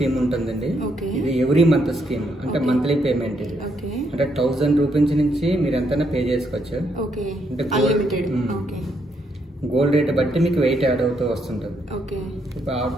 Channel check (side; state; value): both; normal; correlation 0.75